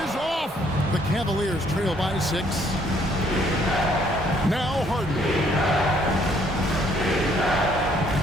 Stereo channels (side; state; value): both; normal; correlation 0.65